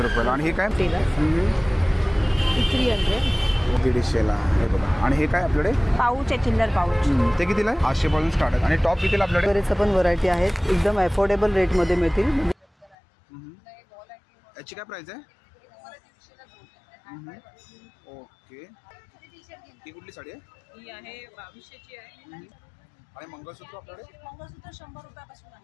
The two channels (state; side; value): drops out; right; at 13.0 s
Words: रुपयाला आणि हे काय? 300 150ला हे बघा। आणि हे काय आपल्याकडे? पाऊच आहे, चिल्लर पाऊच। ते कितीला आहे? 800 पासून स्टार्ट आहे आणि टॉप कितीला आपल्याकडे? बरेच पण व्हरायटी आहेत, एकदम अफोर्डेबल रेटमध्ये मिळतील। याची काय प्राइस आहे? ओके, ही कुठली साडी आहे? ही आहे 2200ची आहे आणि मंगळसूत्र आपल्याकडे? मंगळसूत्र 100 रुपयापासून